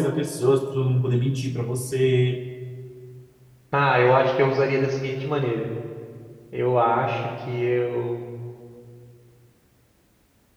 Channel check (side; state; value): both; identical; correlation 1.00